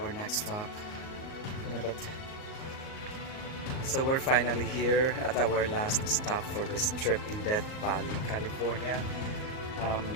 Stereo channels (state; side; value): late; right; 38 ms